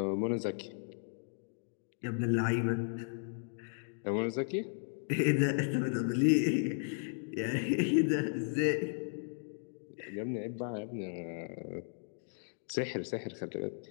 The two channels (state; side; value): silent; right; digital silence